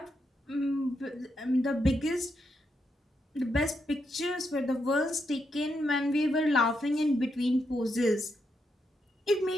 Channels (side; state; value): both; normal; correlation 0.82